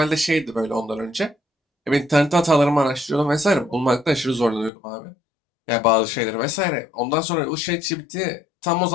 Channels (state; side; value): drops out; right; at 4.7 s